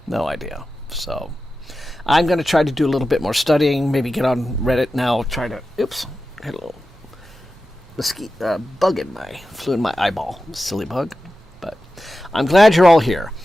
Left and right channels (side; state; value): both; normal; correlation 0.93